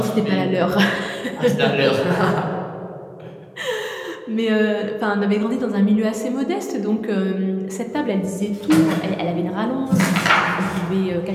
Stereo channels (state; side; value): identical; both; correlation 1.00